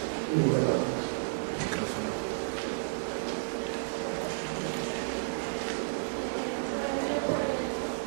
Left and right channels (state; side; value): silent; left; digital silence